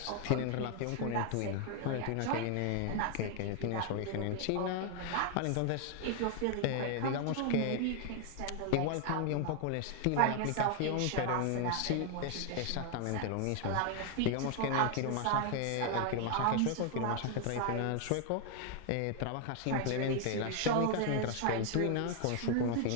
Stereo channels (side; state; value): both; different; correlation 0.00